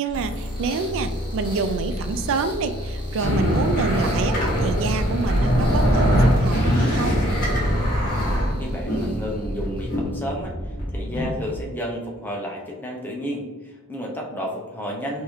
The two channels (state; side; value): normal; both; correlation 0.62